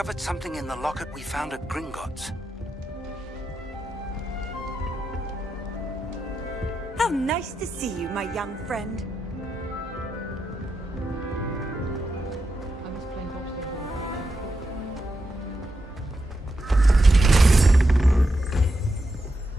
something in the locket we found at Gringotts. How nice to see you, my young friend.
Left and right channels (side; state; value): both; normal; correlation 0.86